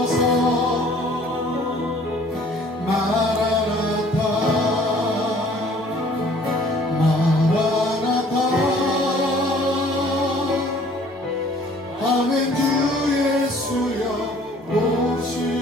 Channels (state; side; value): normal; both; correlation 0.55